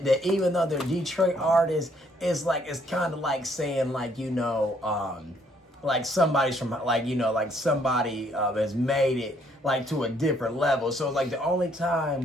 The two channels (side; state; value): both; normal; correlation 0.67